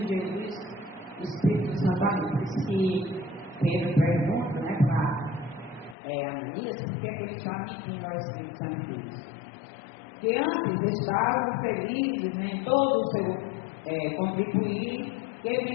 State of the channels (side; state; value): right; drops out; at 6.0 s